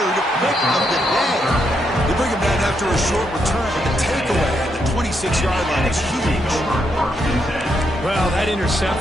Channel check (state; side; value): normal; both; correlation 0.79